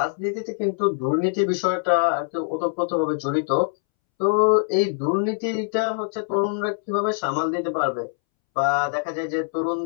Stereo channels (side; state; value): right; silent; 63 dB below the other